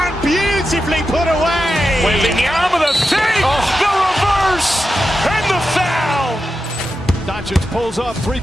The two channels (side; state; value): both; normal; correlation 0.90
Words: beautifully put away. Waving the arm of the feet, the reverse, and the foul. Doncic pulls up,